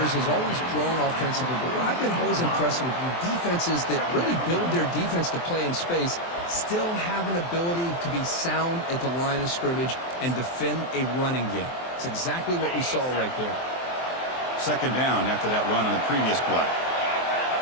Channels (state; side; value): late; right; 23 ms